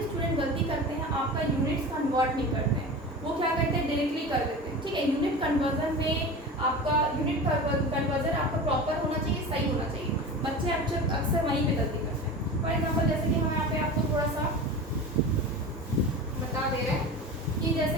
स्टूडेंट गलती करते हैं, आपका यूनिट्स कन्वर्ट नहीं करते हैं, वो क्या करते हैं, डायरेक्टली कर देते हैं, ठीक है। यूनिट कन्वर्जन में आपका यूनिट कन्वर्जन आपका प्रॉपर होना चाहिए, सही होना चाहिए। बच्चे अक्सर वहीं पे गलती करते हैं। फॉर एग्जाम्पल जैसे कि हम यहाँ पे आपको थोड़ा सा बता दे रहे हैं कि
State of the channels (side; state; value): both; normal; correlation 0.31